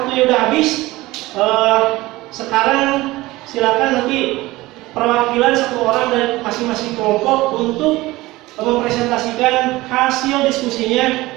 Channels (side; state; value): left; quieter; 19.2 dB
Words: udah habis, sekarang silakan nanti perwakilan 1 orang dari masing-masing kelompok untuk mempresentasikan hasil diskusinya